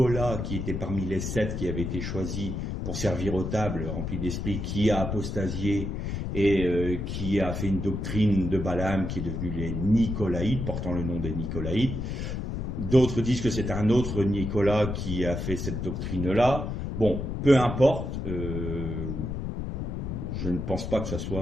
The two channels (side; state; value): left; noise; rumble, 4 dB below the sound